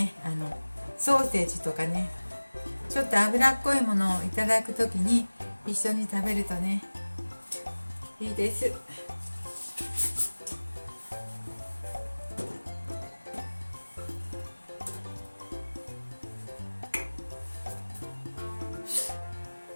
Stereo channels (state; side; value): inverted; both; correlation -1.00